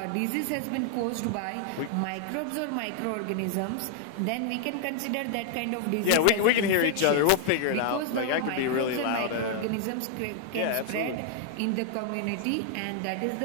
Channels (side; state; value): both; different; correlation 0.00